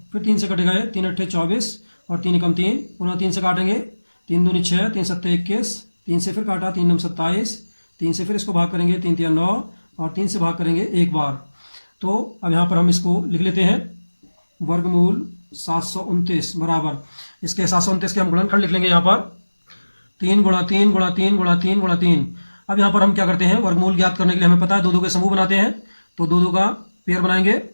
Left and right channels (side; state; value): both; inverted; correlation -1.00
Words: फिर 3 से कटेगा ये, 3 अट्ठे 24 और 3 एकम 3, पुनः 3 से काटेंगे। 3 दूनी 6, 3 सत्ते 21, 3 से फिर काटा, 3 नम 27, 3 से फिर इसको भाग करेंगे, 3 तिया 9 और 3 से भाग करेंगे एक बार। तो अब यहाँ पर हम इसको लिख लेते हैं, वर्गमूल 729 बराबर, इसके 729 के हम गुणनखंड लिख लेंगे यहाँ पर, 3 गुणा 3 गुणा 3 गुणा 3 गुणा 3। अब यहाँ पर हम क्या करते हैं, वर्गमूल ज्ञात करने के लिए हमें पता है 2 के समूह बनाते हैं, तो 2 का पेयर बनाएंगे,